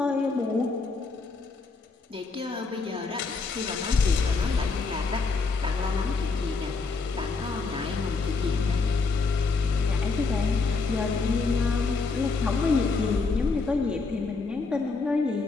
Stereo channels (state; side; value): quieter; right; 4.2 dB